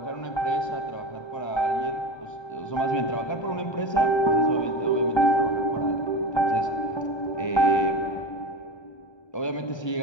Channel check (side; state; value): right; late; 1.2 ms